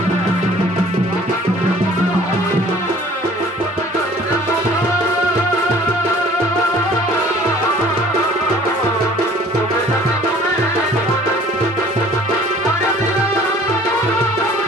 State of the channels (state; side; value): normal; both; correlation 0.52